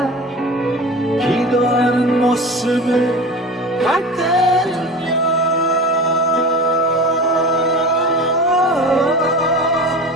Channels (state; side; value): normal; both; correlation 0.34